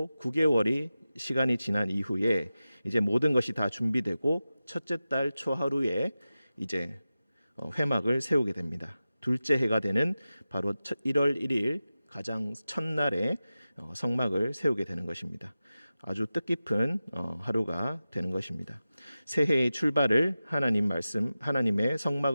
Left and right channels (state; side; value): inverted; both; correlation -0.94